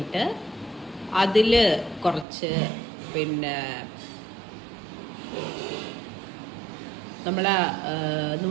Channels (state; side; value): drops out; left; at 2.2 s